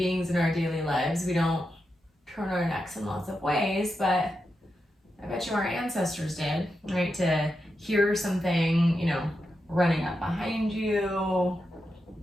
in our daily lives, we don't turn our necks in lots of ways, but I bet you our ancestors did, right? To hear something, you know, running up behind you.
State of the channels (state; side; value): normal; both; correlation 0.87